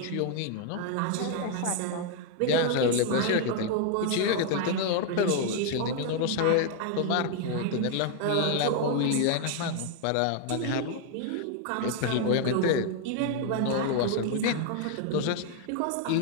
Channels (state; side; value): different; both; correlation 0.00